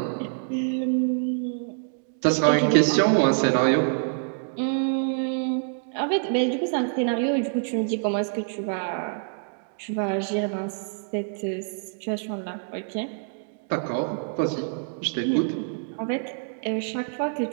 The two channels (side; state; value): left; silent; 61 dB below the other